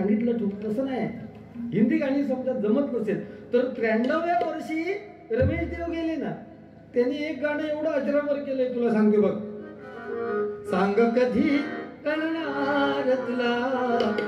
तू, तसं नाही. हिंदी गाणी समजा जमत नसेल तर 93व्या वर्षी रमेश देव गेले ना, त्यांनी एक गाणं एवढं अजरामर केलंय, तुला सांगते बघ. सांग कधी कळणार तुला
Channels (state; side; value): identical; both; correlation 1.00